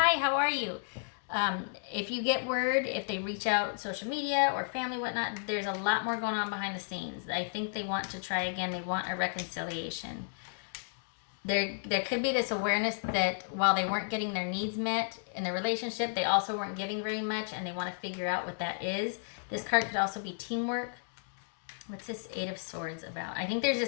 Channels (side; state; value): right; silent; digital silence